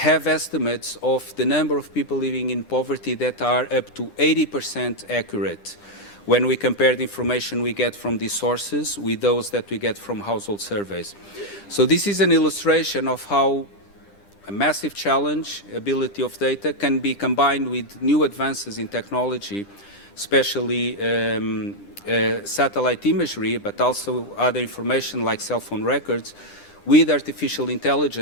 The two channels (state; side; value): late; right; 9.9 ms